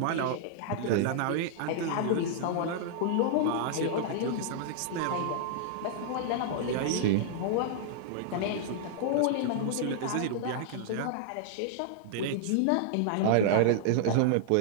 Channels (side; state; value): both; different; correlation -0.01